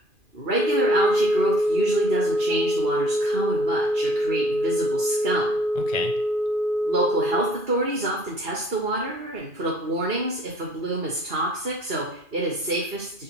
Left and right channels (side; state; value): left; late; 2.4 ms